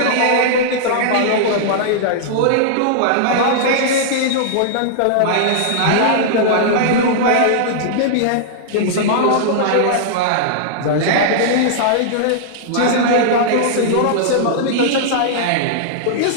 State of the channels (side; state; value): both; different; correlation -0.01